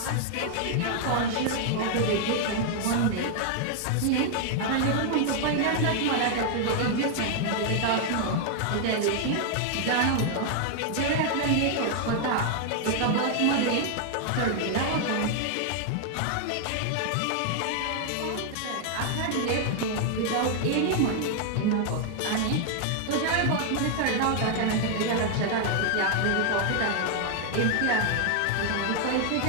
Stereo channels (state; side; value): different; both; correlation 0.00